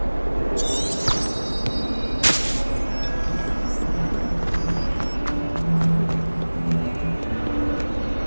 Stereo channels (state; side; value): inverted; both; correlation -1.00